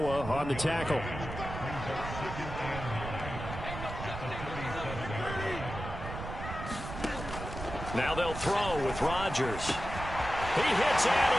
on the tackle. Now they'll throw with Rodgers. He hits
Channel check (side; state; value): right; noise; rumble, 8 dB below the sound